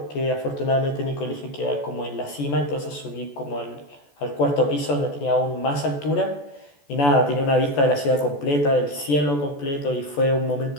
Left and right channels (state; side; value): late; right; 14 ms